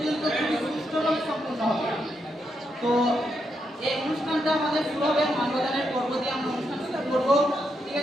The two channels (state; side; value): normal; both; correlation 0.81